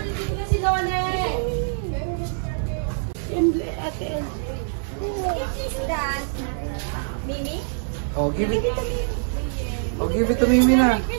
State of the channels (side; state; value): left; silent; 62 dB below the other